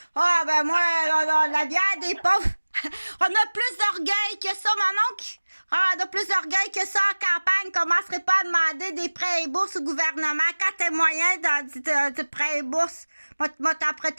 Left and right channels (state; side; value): inverted; both; correlation -1.00